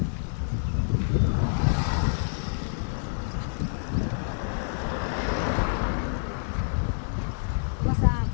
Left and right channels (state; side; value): silent; right; digital silence